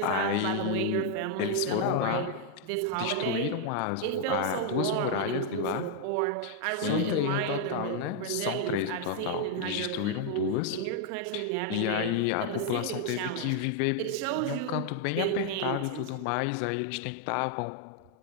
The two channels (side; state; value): both; different; correlation 0.00